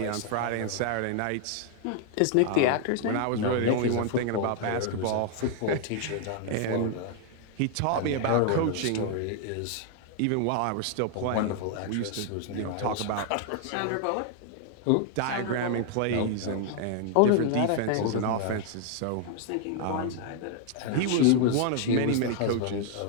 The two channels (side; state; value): both; different; correlation 0.00